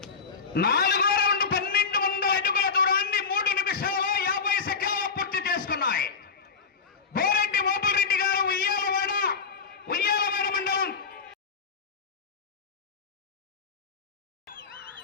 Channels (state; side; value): quieter; right; 5.5 dB